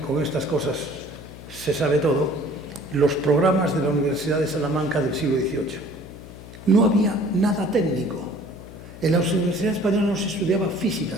estas cosas se sabe todo, los programas de la Universidad de Salamanca del siglo XVIII. No había nada técnico. En la Universidad Española no se estudiaba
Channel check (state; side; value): noise; left; hum, 15 dB below the sound